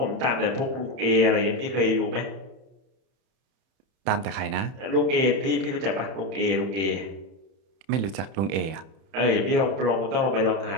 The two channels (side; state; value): left; late; 31 ms